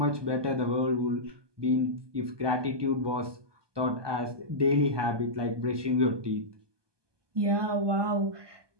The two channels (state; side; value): late; left; 1.2 ms